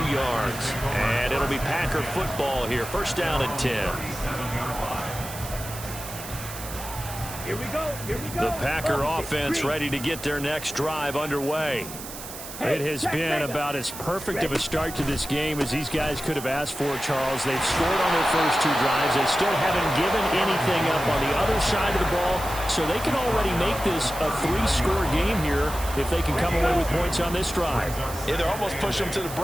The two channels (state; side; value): noise; right; hiss, 11 dB below the sound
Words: yards. And it'll be Packer football here. 1st down and 10. Here we go. The Packer offense ready to get their next drive underway. It has been about as perfect of a start to this game as these guys could have asked for, Charles. They've scored on their first 2 drives. They still haven't given anything up on the other side of the ball, so they can already make this a 3-score game here if they can come away with points on this drive. Yeah, they're almost pushing them to the